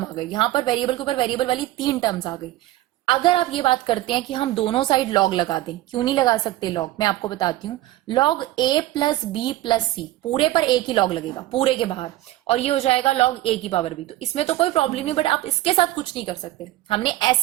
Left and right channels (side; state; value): left; quieter; 15.8 dB